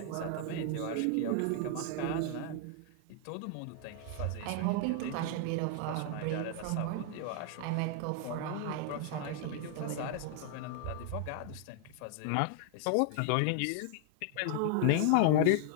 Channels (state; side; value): different; both; correlation 0.00